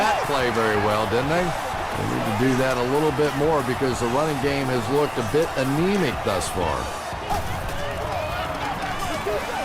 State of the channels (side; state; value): both; identical; correlation 1.00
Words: play very well, didn't they? They need to do that a little bit more because the running game has looked a bit anemic thus far.